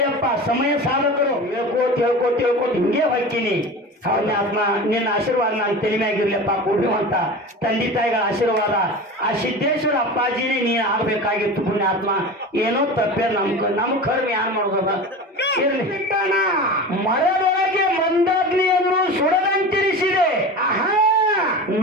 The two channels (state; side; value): normal; both; correlation 0.31